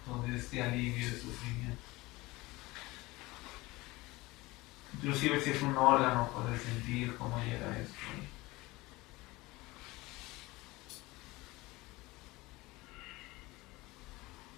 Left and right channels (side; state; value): right; quieter; 21.1 dB